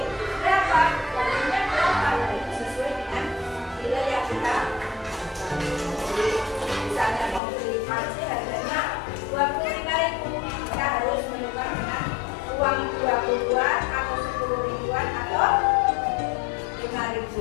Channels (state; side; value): drops out; right; at 7.4 s